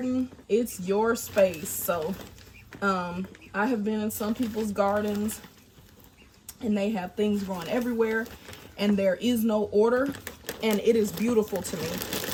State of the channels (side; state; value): both; identical; correlation 1.00